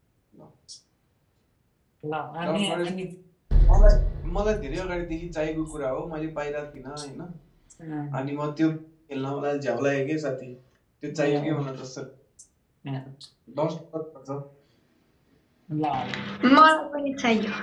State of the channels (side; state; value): both; identical; correlation 1.00